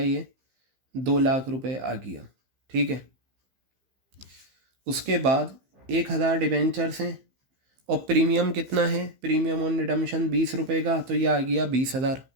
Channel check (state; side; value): late; left; 15 ms